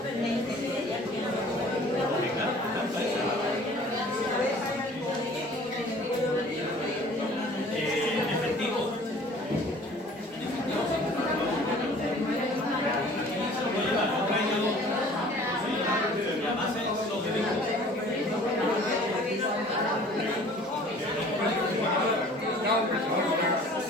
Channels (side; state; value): both; normal; correlation 0.49